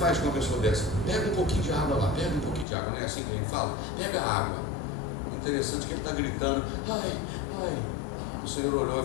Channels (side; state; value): right; drops out; at 2.7 s